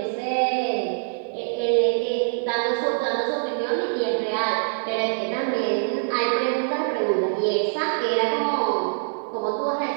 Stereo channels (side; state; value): left; silent; 62 dB below the other